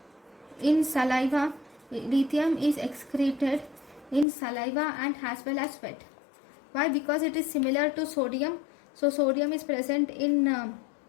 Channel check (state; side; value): drops out; right; at 4.2 s